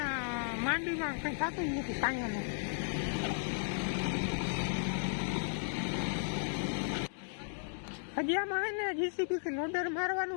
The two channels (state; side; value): silent; right; digital silence